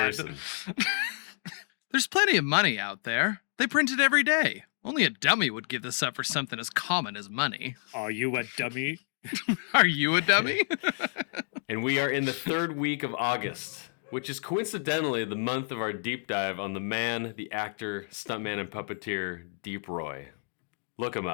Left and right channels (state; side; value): silent; right; digital silence